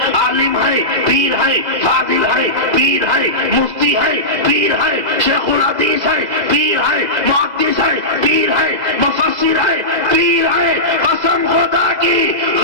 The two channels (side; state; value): left; late; 2.0 ms